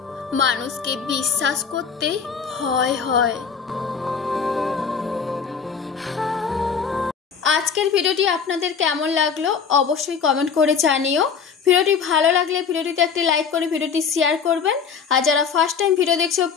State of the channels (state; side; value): quieter; right; 6.3 dB